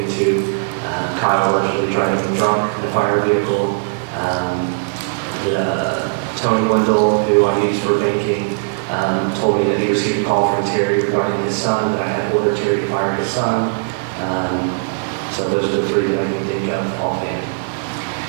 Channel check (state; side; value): silent; left; digital silence